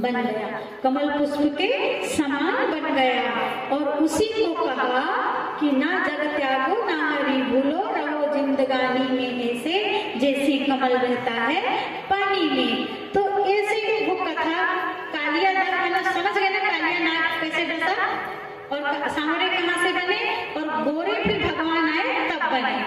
गया, कमल पुष्प के समान बन गया। और उसी को कहा कि ना जग त्यागो ना हरि भूलो, रहो जिंदगानी में ऐसे जैसे कमल रहता है पानी में। तो ऐसे वो कथा कालिया नाग, मतलब समझ गए ना कालिया नाग कैसे डसा, और सांवरे कहाँ से बने, और गोरे फिर भगवान आए तब बने।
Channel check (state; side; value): identical; both; correlation 1.00